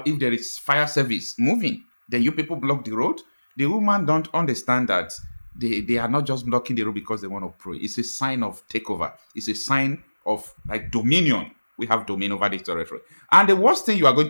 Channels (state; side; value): inverted; both; correlation -1.00